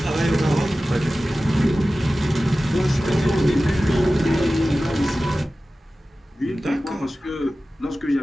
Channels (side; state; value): both; normal; correlation 0.95